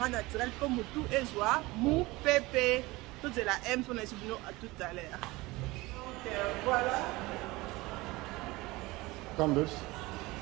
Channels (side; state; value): left; quieter; 21.3 dB